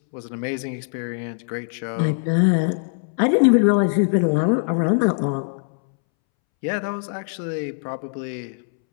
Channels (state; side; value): silent; right; 64 dB below the other